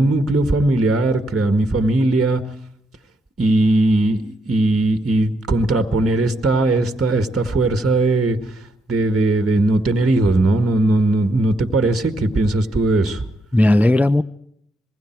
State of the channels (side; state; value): both; normal; correlation 0.78